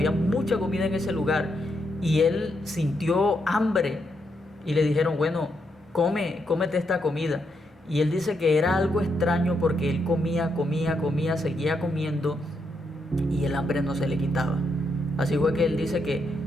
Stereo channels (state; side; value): normal; both; correlation 0.80